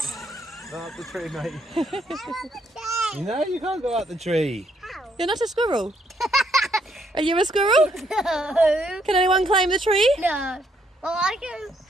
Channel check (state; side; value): normal; both; correlation 0.72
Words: Go up the tree, mate. You know you can't go up the tree. You're not a squirrel. Are you a squirrel? No. Can anyone climb the tree? No. Well, I can.